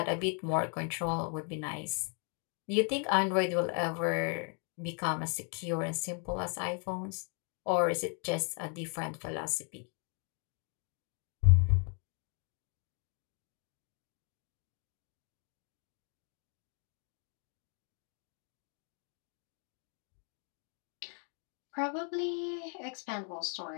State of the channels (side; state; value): right; quieter; 39.4 dB